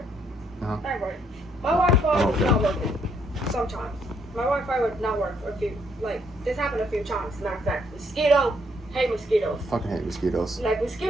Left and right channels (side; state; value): both; normal; correlation 0.70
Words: Uh-huh. Anyway, my Wi-Fi was not working sometimes. My Wi-Fi would not work for this happened a few times. Matter of fact, hate mosquitoes. Fucking hate mosquitoes. Like,